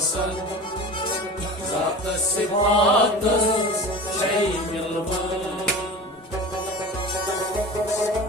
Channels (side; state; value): both; normal; correlation 0.34